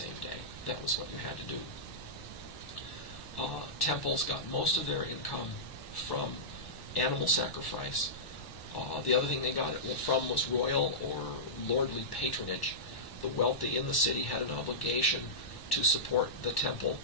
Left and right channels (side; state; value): right; late; 1.1 ms